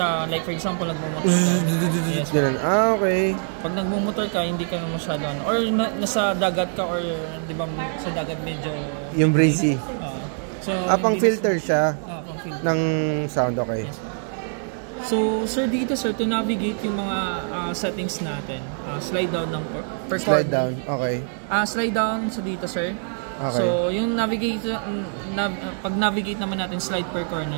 like for example, nagmumotor ka. Yes. Okay. Pag nagmumotor ka, hindi ka na masyado or nasa dagat ka or di ba sa dagat medyo yung breezy. So pang filter siya pang-filter ng sound, okay. Yes. So sir, dito sir, to navigate yung mga settings natin, slide down ng per corner. Slide down, okay. Slide down sa dito sir. Okay. So yung navigate pag navigate naman natin, slide per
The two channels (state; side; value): silent; left; 63 dB below the other